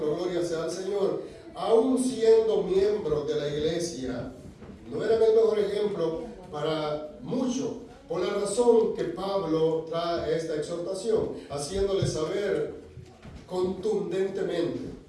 gloria sea al Señor. Aún siendo miembros de la iglesia, no eran el mejor ejemplo para muchos. Por la razón que Pablo trae esta exhortación, haciéndole saber contundentemente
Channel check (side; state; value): both; identical; correlation 1.00